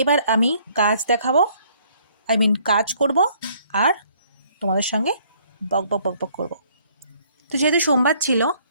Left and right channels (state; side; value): inverted; both; correlation -0.63